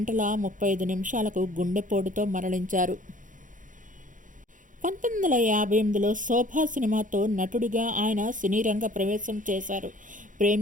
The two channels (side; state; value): left; late; 0.38 ms